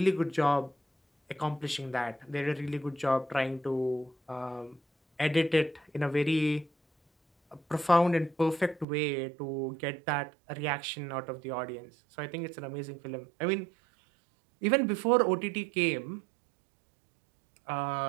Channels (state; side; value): drops out; left; at 8.8 s